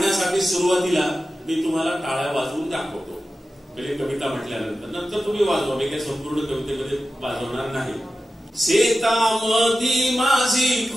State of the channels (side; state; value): both; normal; correlation 0.93